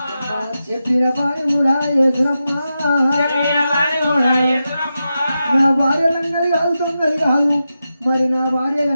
చెప్పిన పని కూడా యేసురమ్మా నా భార్య లంగది కాదు తొందరి కాదు మరి నా భార్య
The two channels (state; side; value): inverted; both; correlation -0.90